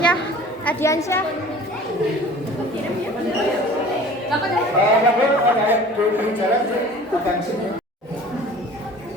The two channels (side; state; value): both; normal; correlation 0.44